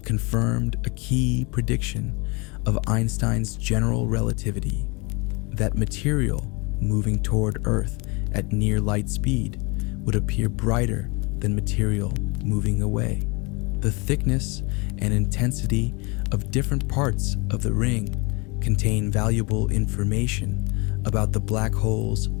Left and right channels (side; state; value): right; quieter; 28.4 dB